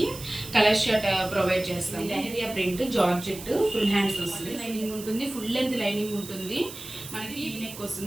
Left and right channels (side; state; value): right; noise; hiss, 13 dB below the sound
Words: కలర్ షర్ట్ ప్రొవైడ్ చేస్తాం. Leheriya print georgette full hands వస్తుంది. లైనింగ్ ఉంటుంది, ఫుల్ లెంత్ లైనింగ్ ఉంటుంది. మనకి ఈ నెక్